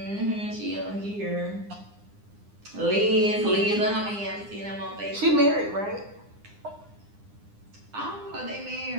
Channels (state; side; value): late; left; 9.8 ms